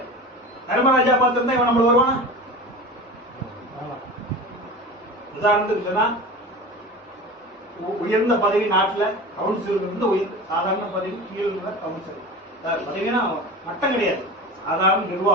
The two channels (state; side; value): normal; both; correlation 0.32